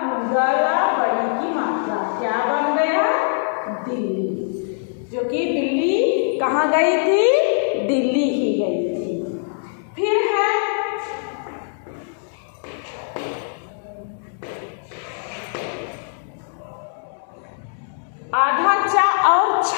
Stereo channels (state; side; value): silent; right; digital silence